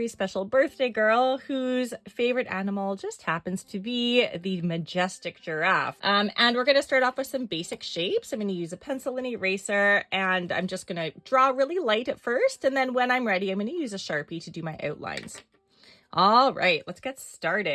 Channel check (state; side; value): identical; both; correlation 1.00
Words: special birthday girl whose favorite animal just happens to be the majestic giraffe. And we're going to start off with some basic shapes. I'm going to use a pencil and eraser, and I'm just going to draw really light at first. And then when I'm ready, I'm going to use a Sharpie to do my outlines. All right, let's get